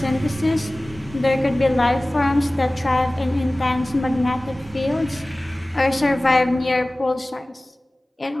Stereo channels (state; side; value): normal; both; correlation 0.98